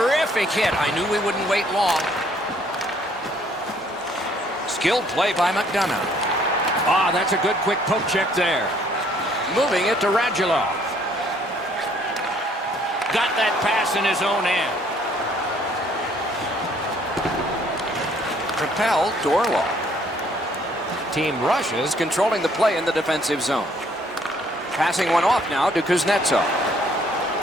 hit. I knew we wouldn't wait long. Skilled play by McDonough. Ah, that's a good quick poke check there. Moving it to Radulov. Got that pass in his own end. Propelled to Orlov. Team Russia's controlling the play in the defensive zone. Passing one off now to Kuznetsov.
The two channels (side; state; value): both; normal; correlation 0.63